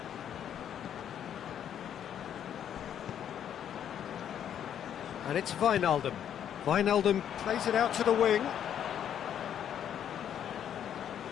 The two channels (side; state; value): right; quieter; 9.5 dB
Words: And it's Wijnaldum. Wijnaldum plays it out to the wing.